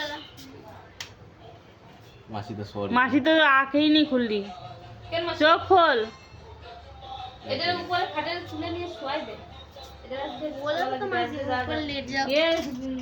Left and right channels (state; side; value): identical; both; correlation 1.00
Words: मासी तो सॉरी मासी तो आंखें ही नहीं खुल रही কেন মাসি? चोख खोल এটার উপরে খাটের তুলে নিয়ে শোয়াই দে। এটা बोला तो मासी ऊपर लेट जाओ ये